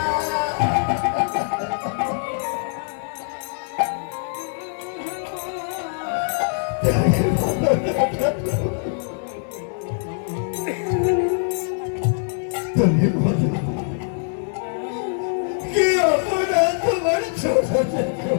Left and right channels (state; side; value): silent; right; 62 dB below the other